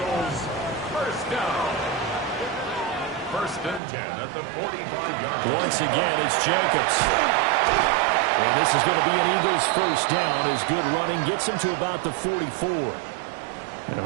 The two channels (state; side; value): drops out; left; at 3.8 s